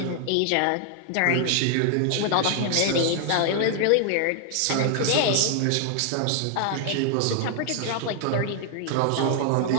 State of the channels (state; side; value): different; both; correlation 0.00